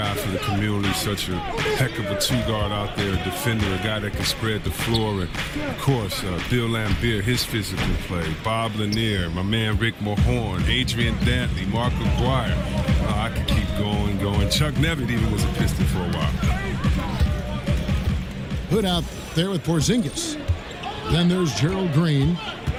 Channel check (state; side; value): identical; both; correlation 1.00